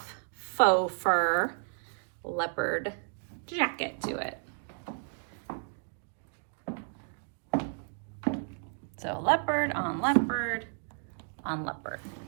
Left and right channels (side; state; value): left; silent; 56 dB below the other